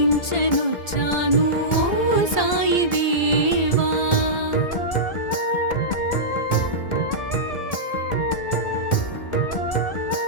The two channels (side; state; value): right; late; 1.7 ms